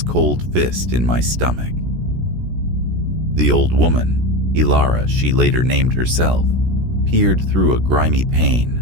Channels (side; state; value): left; late; 17 ms